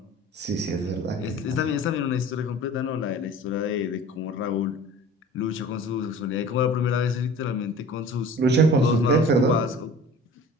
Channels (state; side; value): normal; both; correlation 0.42